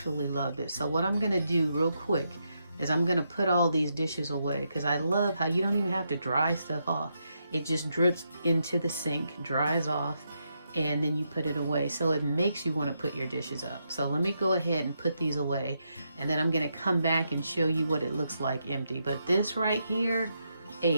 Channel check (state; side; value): inverted; both; correlation -0.82